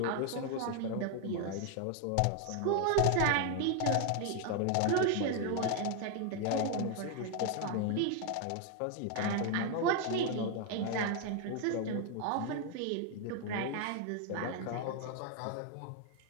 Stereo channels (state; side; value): different; both; correlation 0.00